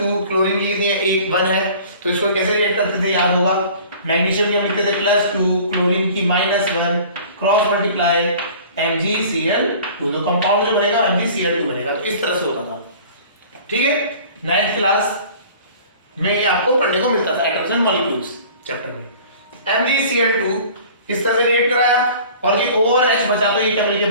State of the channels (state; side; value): inverted; both; correlation -0.46